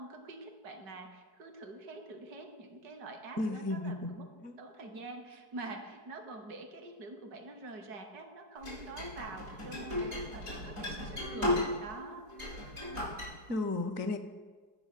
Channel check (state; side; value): late; left; 4.7 ms